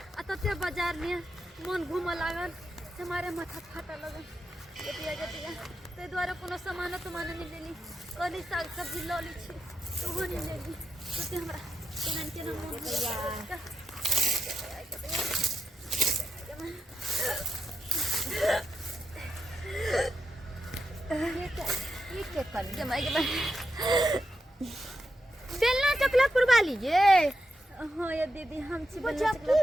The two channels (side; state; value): both; normal; correlation 0.86